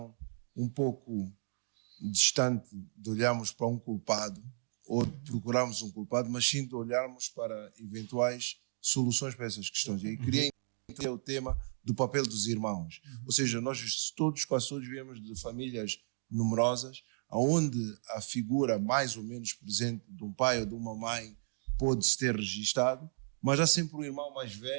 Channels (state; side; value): silent; left; digital silence